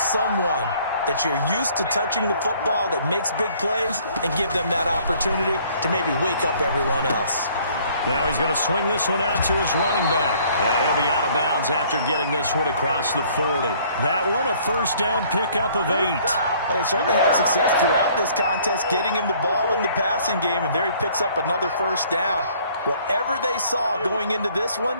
that you're used to touching the football that makes big plays and give them that opportunity to maybe wake up everyone else. Now he's going to swing this one out to his running back. And he'll be out of bounds after getting this one across the 40. That one a first down pickup of 8. Well, they certainly had success throughout this contest getting him the ball in the passing game, and there he picks up another first down. Whatever they saw going into this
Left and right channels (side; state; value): both; inverted; correlation -0.59